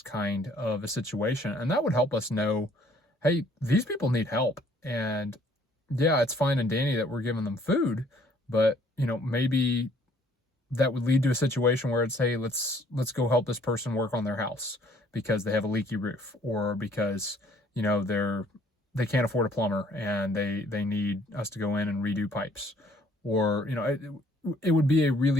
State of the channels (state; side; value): normal; both; correlation 0.60